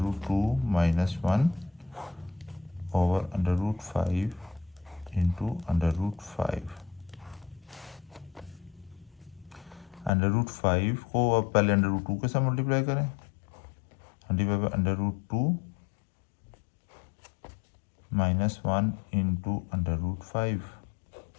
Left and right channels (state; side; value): drops out; right; at 10.1 s